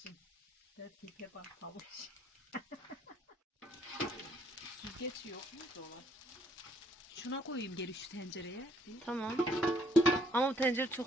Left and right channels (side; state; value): both; normal; correlation 0.66